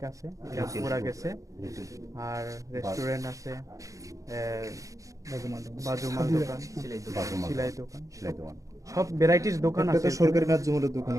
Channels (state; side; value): late; left; 0.16 ms